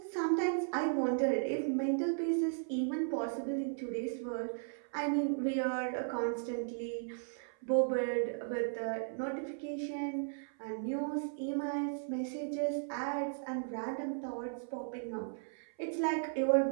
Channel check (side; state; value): left; silent; 54 dB below the other